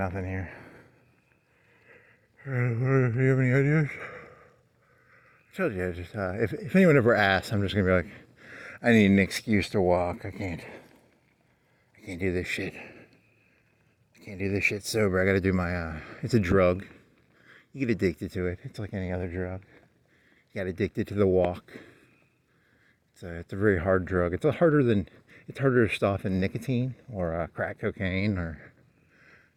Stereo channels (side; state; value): both; identical; correlation 1.00